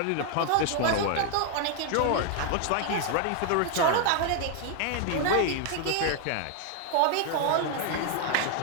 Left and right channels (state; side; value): different; both; correlation 0.00